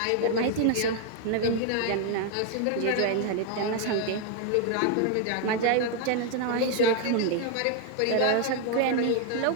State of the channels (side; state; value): both; different; correlation 0.01